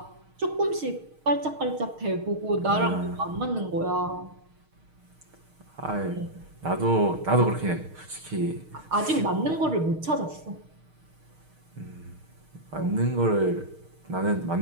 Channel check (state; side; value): late; left; 6.5 ms